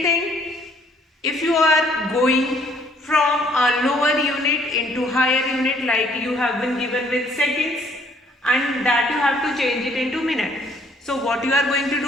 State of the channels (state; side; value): normal; both; correlation 0.62